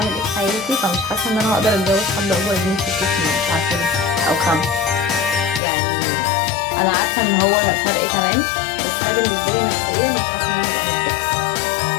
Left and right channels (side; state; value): right; drops out; at 5.6 s